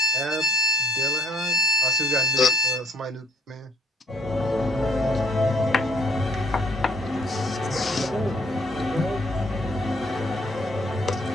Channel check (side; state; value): both; normal; correlation 0.60